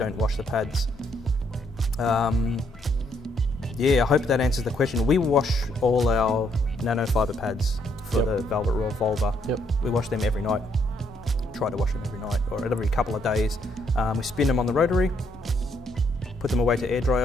wash the pads. I hope that answers the question. We wash all our nanofiber pads for the Velvet Revolver. We wash them every night. Try to wash them every night or every couple of days. We spin them on the rotary, put them away to air dry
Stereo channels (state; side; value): normal; both; correlation 0.72